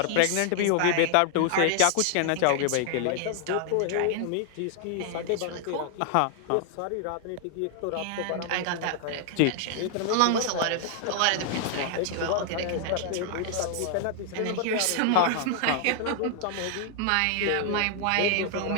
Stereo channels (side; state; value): both; different; correlation 0.00